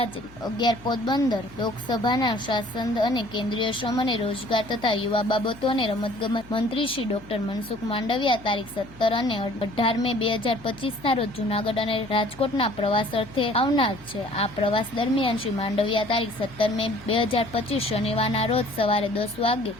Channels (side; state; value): left; noise; hum, 22 dB below the sound